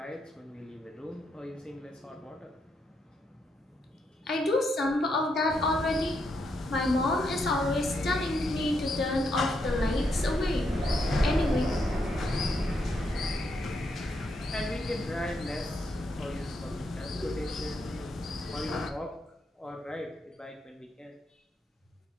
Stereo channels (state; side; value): normal; both; correlation 0.79